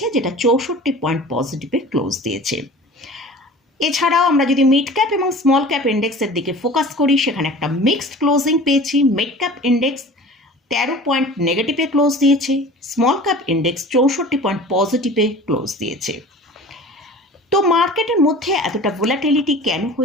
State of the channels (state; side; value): normal; both; correlation 0.41